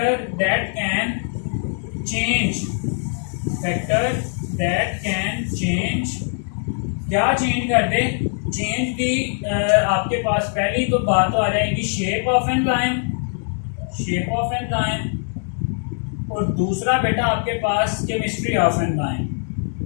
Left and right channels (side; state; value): right; silent; 60 dB below the other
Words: that can change, factor that can change, क्या चेंज कर दे? चेंज दी आपके पास पहली तो बात तो आ जाएगी shape of enzyme, shape of enzyme, और दूसरा बेटा आपके पास केमिस्ट्री ऑफ एंजाइम।